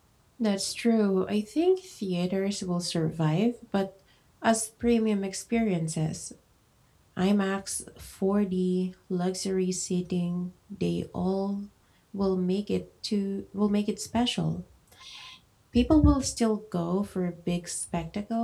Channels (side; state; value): both; identical; correlation 1.00